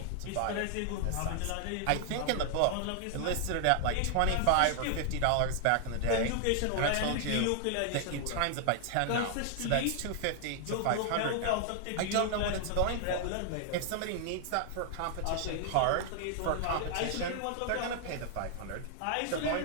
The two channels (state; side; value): different; both; correlation 0.00